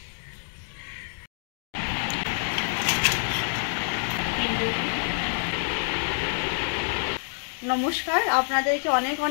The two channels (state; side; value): silent; right; digital silence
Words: নমস্কার, আপনাদেরকে অনেক